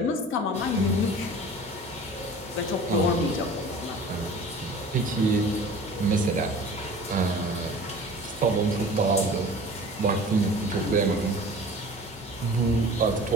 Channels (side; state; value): both; normal; correlation 0.42